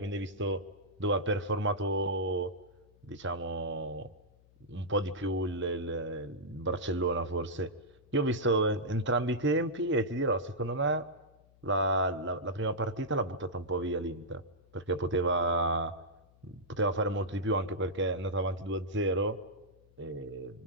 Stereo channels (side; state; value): left; noise; hum, 28 dB below the sound